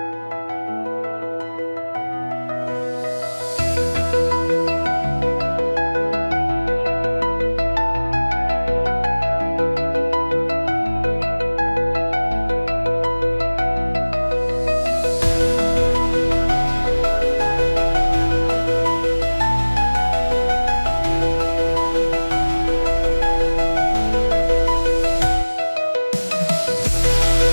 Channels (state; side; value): inverted; both; correlation -1.00